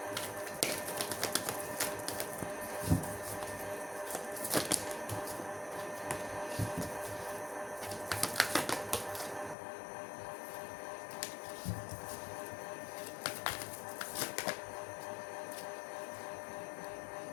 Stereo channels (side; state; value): right; drops out; at 9.6 s